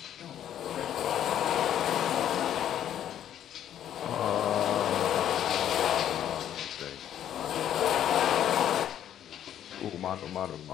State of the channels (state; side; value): quieter; right; 10.6 dB